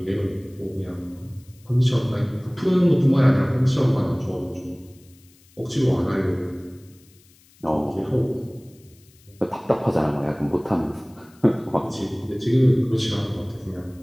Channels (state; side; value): noise; left; hiss, 29 dB below the sound